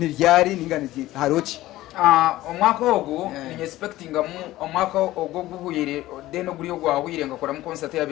ninganije harochi omwaka ogo ni expecting omwaka ogo guhuyire deno guriyo gwahwire ngakora mu concert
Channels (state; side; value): quieter; right; 16.2 dB